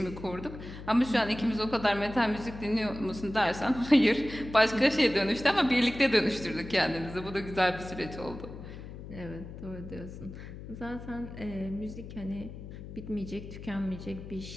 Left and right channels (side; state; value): left; noise; hum, 12 dB below the sound